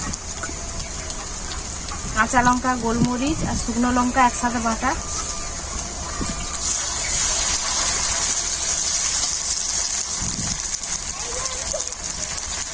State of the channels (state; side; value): identical; both; correlation 1.00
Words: কাঁচা লঙ্কা, গোলমরিচ আর শুকনো লঙ্কা একসাথে বাটা,